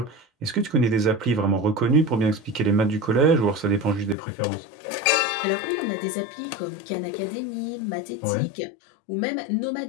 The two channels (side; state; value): right; drops out; at 4.2 s